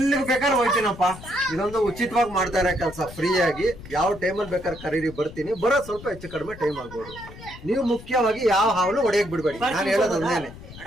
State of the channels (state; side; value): noise; left; rumble, 16 dB below the sound